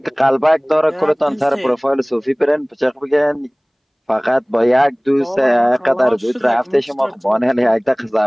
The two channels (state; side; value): identical; both; correlation 1.00